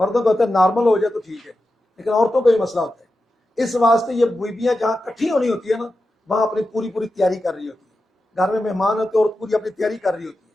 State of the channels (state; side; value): normal; both; correlation 0.91